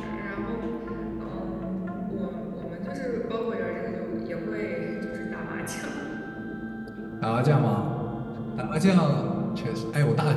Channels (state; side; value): identical; both; correlation 1.00